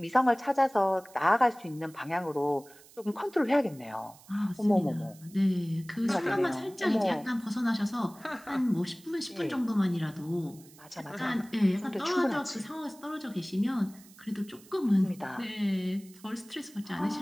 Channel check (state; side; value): noise; right; hiss, 23 dB below the sound